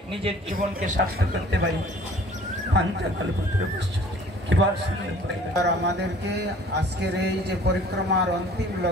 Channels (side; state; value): both; normal; correlation 0.51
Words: নিজের জীবনকে সার্থক করতে পারি। আমাদেরকে আজকের এই যে পরিক্রমার অন্তিম